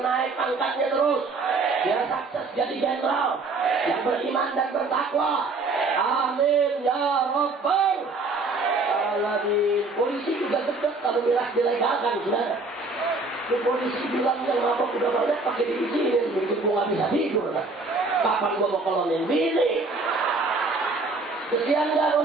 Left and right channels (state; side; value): quieter; left; 3.6 dB